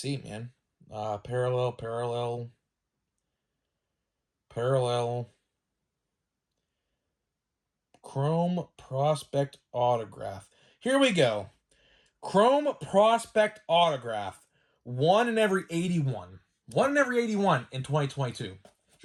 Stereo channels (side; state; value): both; identical; correlation 1.00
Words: man. Parallel. Chrome Prospect Autograph. Here we go. Chrome Prospect Autograph. 1 in every 81. 1 in every 81 in 2022.